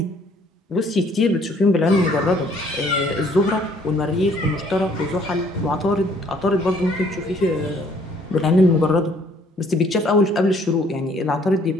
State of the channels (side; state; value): both; normal; correlation 0.61